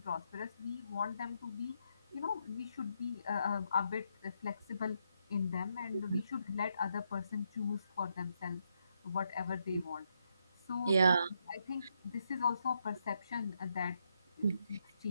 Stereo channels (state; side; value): inverted; both; correlation -0.79